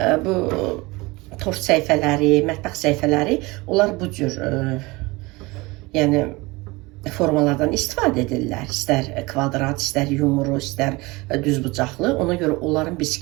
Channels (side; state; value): left; quieter; 23.1 dB